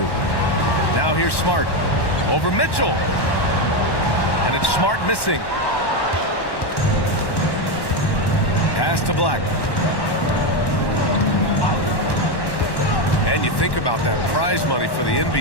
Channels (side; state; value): right; late; 1.1 ms